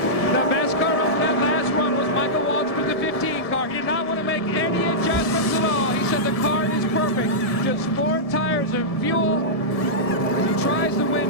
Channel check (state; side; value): late; right; 1.7 ms